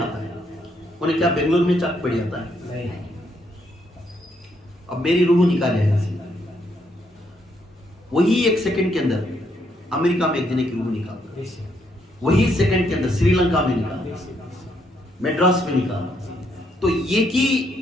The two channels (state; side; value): normal; both; correlation 0.74